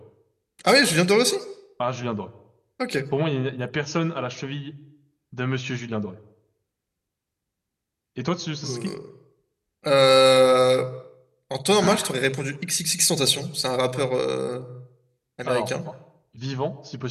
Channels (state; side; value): identical; both; correlation 1.00